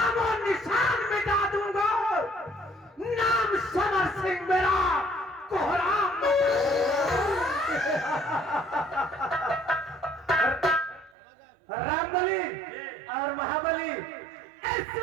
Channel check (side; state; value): left; drops out; at 11.2 s